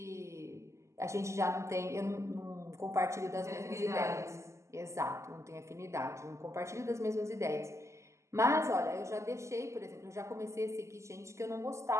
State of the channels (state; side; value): late; left; 0.14 ms